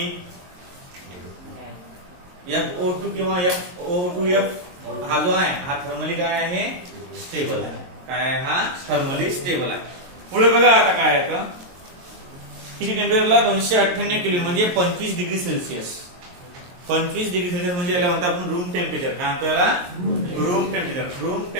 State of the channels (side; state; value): left; late; 22 ms